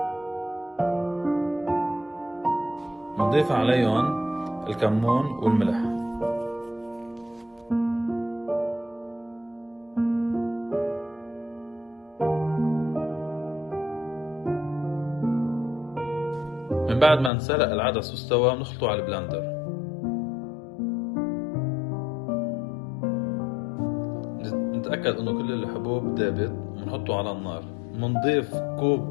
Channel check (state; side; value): drops out; right; at 17.3 s